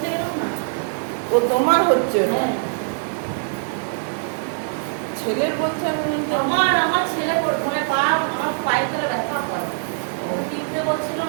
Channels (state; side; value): silent; left; 64 dB below the other